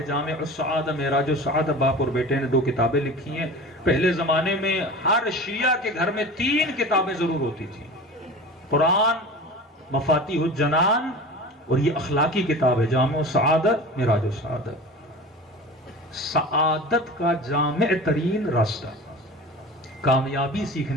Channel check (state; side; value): normal; both; correlation 0.35